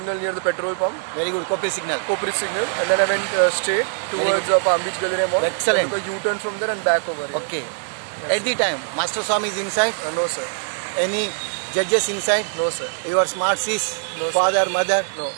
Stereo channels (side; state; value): left; silent; digital silence